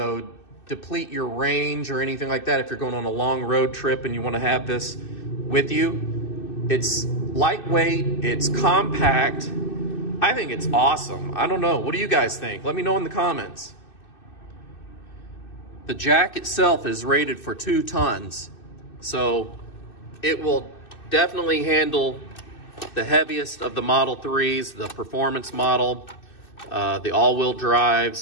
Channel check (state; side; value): late; right; 2.6 ms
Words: deplete your range or anything like that if you're going on a long road trip and you wanna have this with you. It's lightweight, it's compact. I think it's awesome. I don't know, what do you guys think? Let me know in the comments. The jack itself is rated for 2 tons. So it will definitely handle the heaviest of the Model 3s, the performance model, the all-wheel